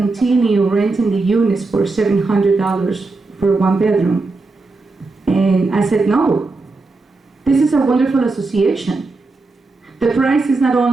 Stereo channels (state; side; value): quieter; left; 3.6 dB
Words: renting the units for $700 for 1 bedroom, and I said no. This is a wonderful association. The price is not